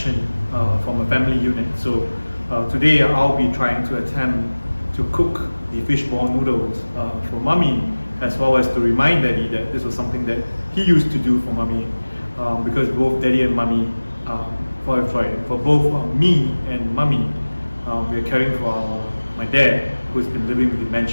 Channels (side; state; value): both; inverted; correlation -1.00